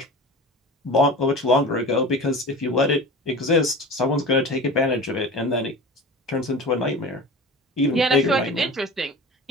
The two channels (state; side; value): normal; both; correlation 0.35